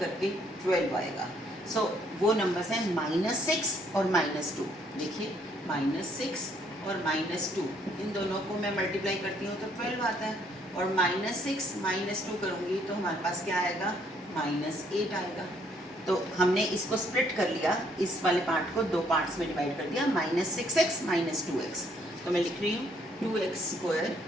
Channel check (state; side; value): normal; both; correlation 0.67